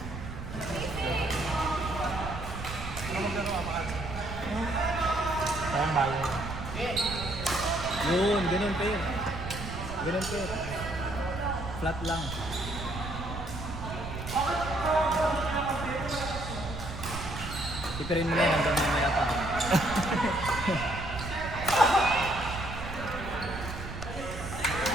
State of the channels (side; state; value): right; noise; rumble, 8 dB below the sound